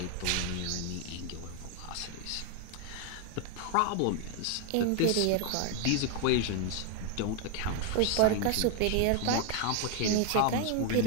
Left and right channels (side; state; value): both; different; correlation 0.01